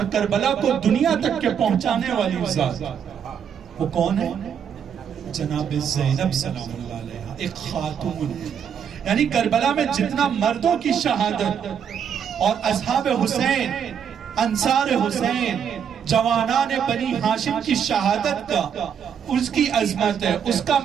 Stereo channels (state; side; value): quieter; left; 7.9 dB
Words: کربلا کو دنیا تک کے پہنچانے والی ذات، وہ کون ہے؟ جناب زینب سلام اللہ علیہ، ایک خاتون ہے۔ یعنی کربلا میں جتنا مردوں کی شہادت اور اصحاب حسین، انصار حسین، جوانان بنی ہاشم کی شہادت کا، اس کی عظمت ہے، اس کا